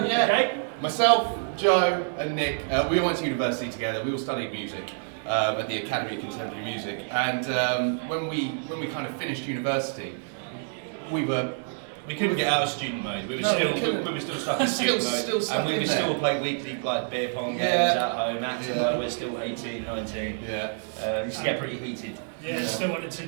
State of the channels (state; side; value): silent; left; digital silence